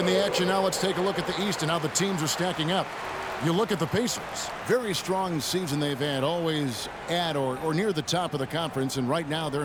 the action now, let's take a look at the East and how the teams are stacking up. You look at the Pacers. Very strong season they've had, always at or near the top of the conference, and right now they're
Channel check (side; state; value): both; identical; correlation 1.00